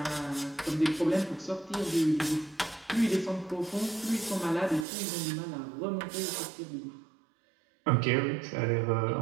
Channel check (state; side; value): drops out; left; at 4.9 s